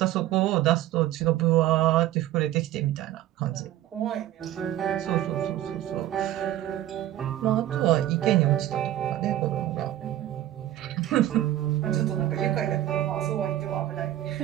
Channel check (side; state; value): left; quieter; 13.5 dB